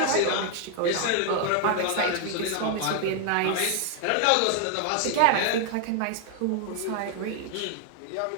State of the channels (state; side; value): different; both; correlation 0.00